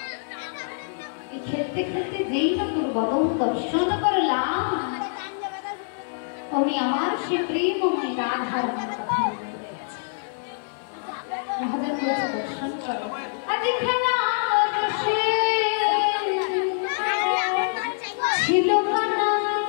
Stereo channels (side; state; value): right; silent; digital silence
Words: খেলতে খেলতে যেই না তোর বদন দর্শন করলাম অমনি আমার সে প্রেমময় রাধার কথা মনে পড়ে গেছে রাধার কাছে দর্শন করো আজ খেলা রসে ছিল